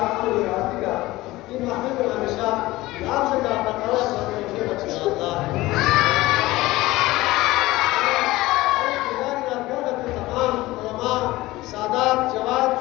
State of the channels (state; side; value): quieter; right; 18.5 dB